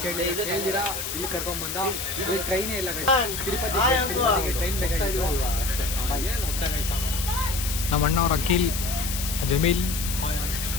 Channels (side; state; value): left; noise; hiss, 5 dB below the sound